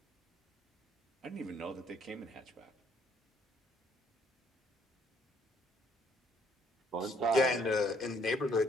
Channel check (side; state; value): both; normal; correlation 0.66